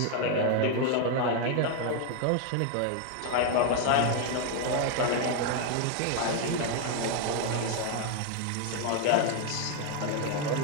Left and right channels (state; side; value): different; both; correlation 0.01